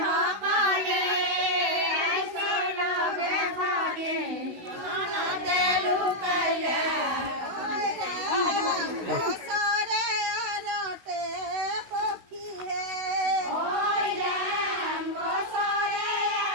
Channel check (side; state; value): left; late; 16 ms